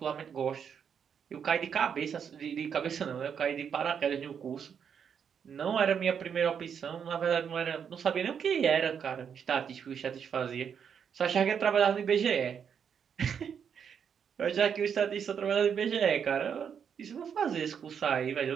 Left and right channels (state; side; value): quieter; left; 7.5 dB